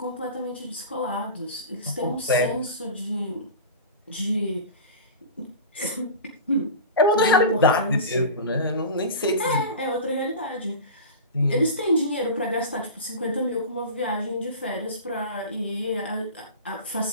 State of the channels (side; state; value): both; inverted; correlation -0.31